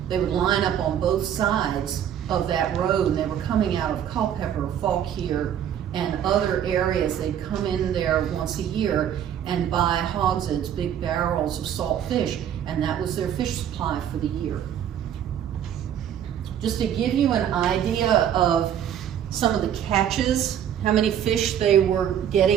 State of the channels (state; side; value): quieter; left; 9.7 dB